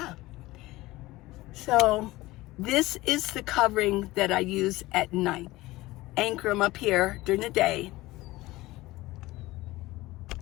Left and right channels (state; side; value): quieter; right; 18.9 dB